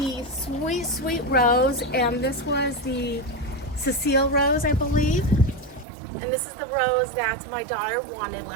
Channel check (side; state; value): left; drops out; at 5.9 s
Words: sweet rose, and this was the Cecile rose, I believe. And this is the rose that my daughter wanted